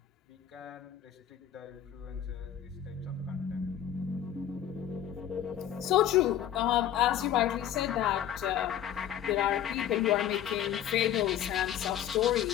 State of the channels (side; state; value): right; quieter; 10.6 dB